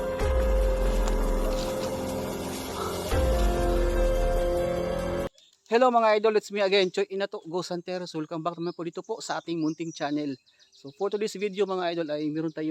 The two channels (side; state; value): both; identical; correlation 1.00